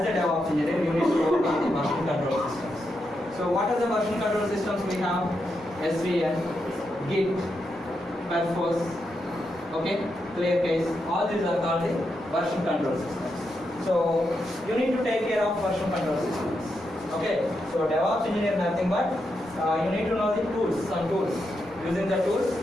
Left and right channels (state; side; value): normal; both; correlation 0.84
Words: a DevOps engineer, you need to work on the version control systems. So what are the version control systems we have? SVN, Git, Perforce, okay, ClearCase, all these are called the version control systems. So you need to take care of version control systems. Okay, so DevOps engineer nothing but you need to know the tools, some tools. Using the tools,